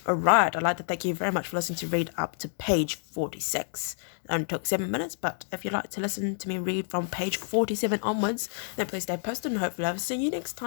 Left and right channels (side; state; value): right; silent; digital silence